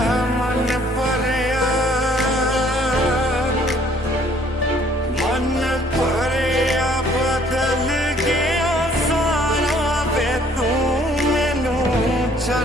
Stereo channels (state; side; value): normal; both; correlation 0.60